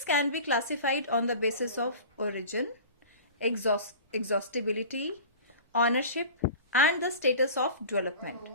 can be classified on the basis of origin, exhaustibility, ownership and the status of development.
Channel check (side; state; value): both; inverted; correlation -0.38